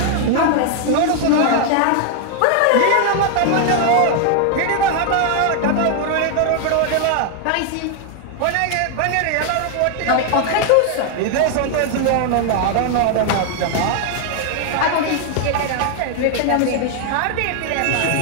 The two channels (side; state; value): both; different; correlation 0.00